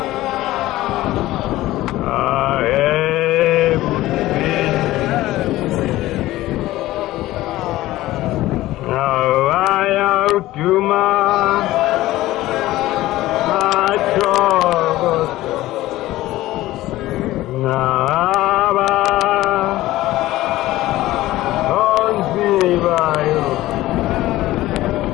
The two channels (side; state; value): right; quieter; 16.5 dB